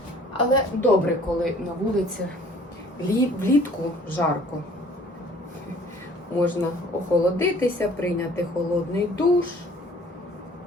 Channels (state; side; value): normal; both; correlation 0.53